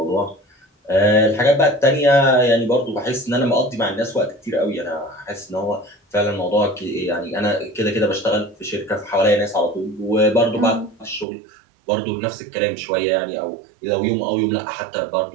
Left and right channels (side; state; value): left; drops out; at 11.2 s